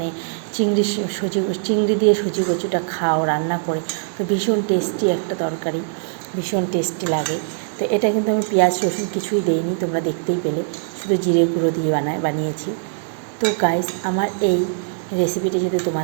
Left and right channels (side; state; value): left; silent; digital silence